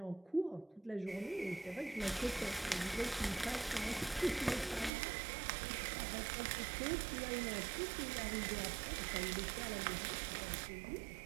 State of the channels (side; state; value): left; drops out; at 4.9 s